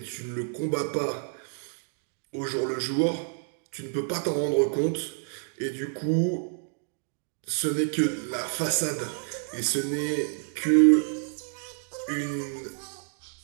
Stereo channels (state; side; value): silent; left; 59 dB below the other